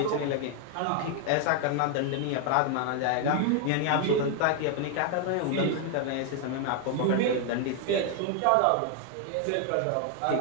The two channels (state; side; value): different; both; correlation 0.00